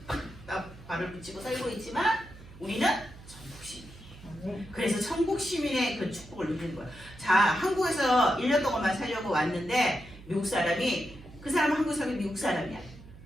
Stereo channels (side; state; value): right; noise; hum, 19 dB below the sound